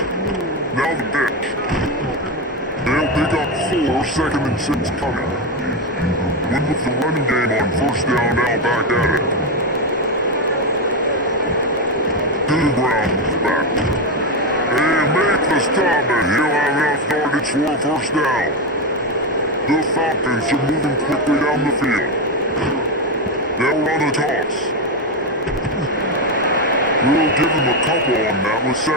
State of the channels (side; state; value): both; normal; correlation 0.10